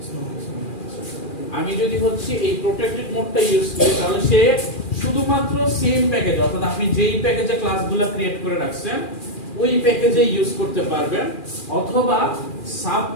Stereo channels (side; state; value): right; late; 2.4 ms